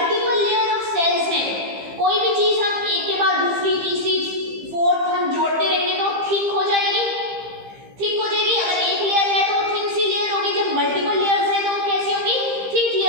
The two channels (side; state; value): left; late; 15 ms